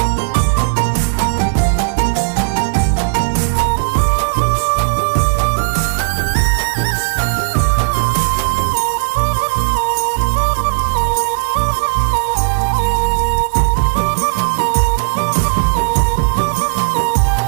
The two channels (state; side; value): silent; left; 70 dB below the other